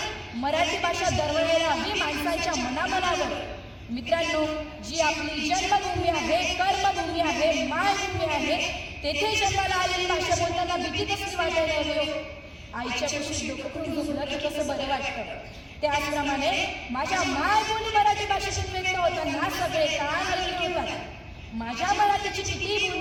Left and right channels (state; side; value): identical; both; correlation 1.00